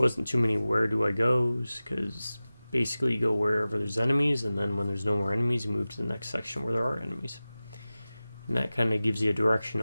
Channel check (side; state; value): both; inverted; correlation -0.96